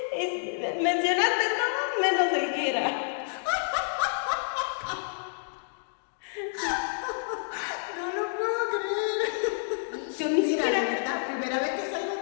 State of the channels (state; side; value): silent; right; digital silence